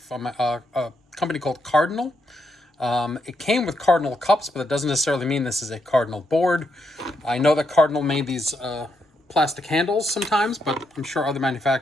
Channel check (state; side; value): normal; both; correlation 0.80